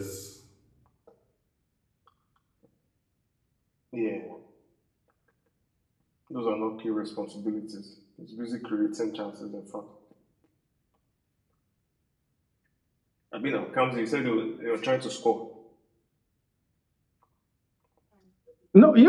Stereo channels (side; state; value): both; identical; correlation 1.00